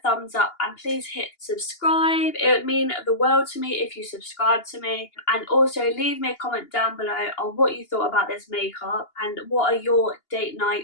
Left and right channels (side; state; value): right; late; 2.8 ms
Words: up and please hit subscribe. It would mean the world to me if you subscribe to me. And also leave me a comment down below on what you thought about this makeup and what are your date